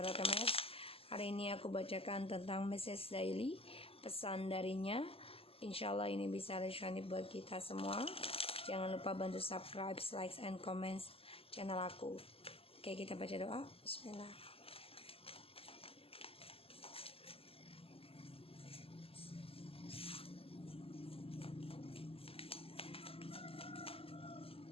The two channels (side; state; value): right; late; 0.28 ms